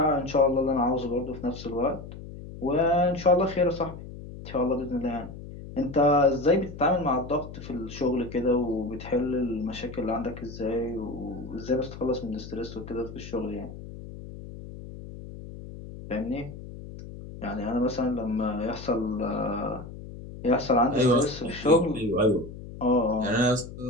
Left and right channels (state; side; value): noise; left; hum, 13 dB below the sound